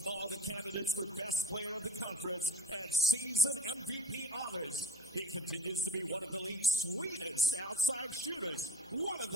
the candidates for Best Player of the Conference and Season MVP honors. He continues to be one of the league's sweetest outside shooters, one of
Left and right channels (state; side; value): noise; right; hum, 29 dB below the sound